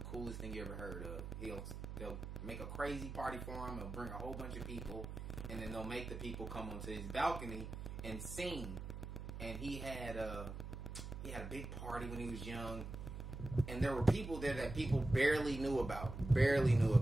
thing you ever heard of. They'll make a crazy party for him. They'll bring a whole bunch of people, and then they'll make the people come onto his balcony and sing. And he had a big party when he was young, and there were people there that people barely knew about.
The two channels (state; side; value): noise; right; hum, 8 dB below the sound